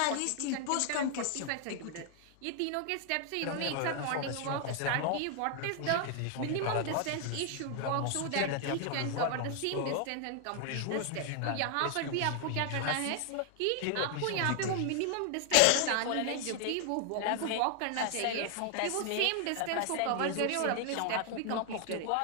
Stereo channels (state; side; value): different; both; correlation 0.00